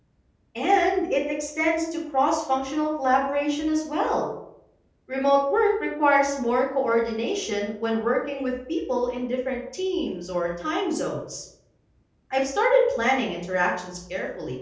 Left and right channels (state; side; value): identical; both; correlation 1.00